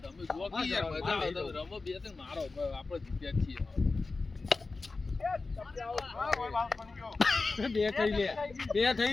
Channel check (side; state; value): right; quieter; 3.8 dB